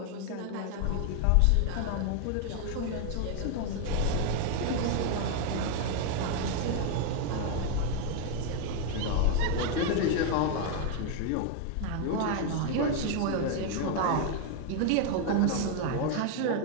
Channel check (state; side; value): different; both; correlation 0.00